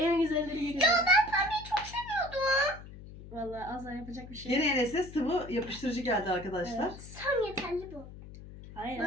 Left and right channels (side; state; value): left; noise; hum, 15 dB below the sound